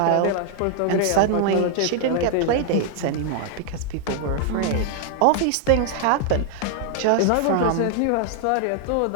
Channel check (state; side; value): different; both; correlation 0.00